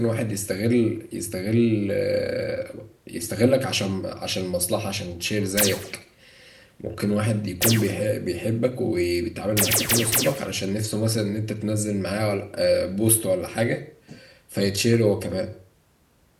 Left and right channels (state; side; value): identical; both; correlation 1.00